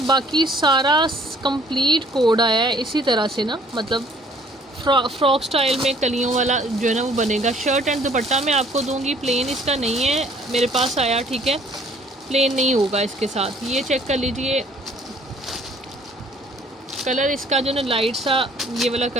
बाकी सारा कंप्लीट कोड आया है इसी तरह से ना, मतलब फ्रॉक स्टाइल में कलियों वाला जो है ना वो बनेगा। शर्ट एंड दुपट्टा मैं आपको दूंगी, प्लेन इसका नहीं है मेरे पास आया, ठीक है। प्लेन नहीं होगा इसके साथ। ये चेक कर लीजिए, कलर इसका जो ना लाइट सा ये वाला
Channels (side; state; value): both; normal; correlation 0.57